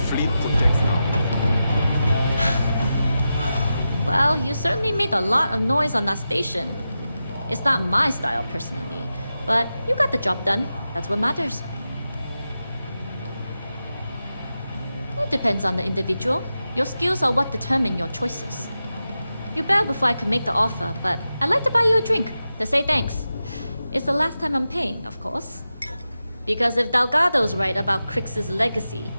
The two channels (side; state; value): both; inverted; correlation -0.91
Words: protects now. Well, you certainly made a lot of noise on that station. It's not my style personally, but you got the job done. That's what matters. It depends on the individual. Your skills are what determine your choices. You bailed before I could make the offer, but I'd like to buy you a drink to say thanks. It's the last time I'm paying, of course. Because if Delgado's right about Crix's legacy,